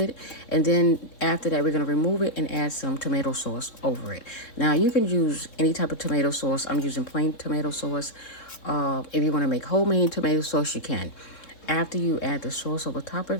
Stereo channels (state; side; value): late; right; 3.7 ms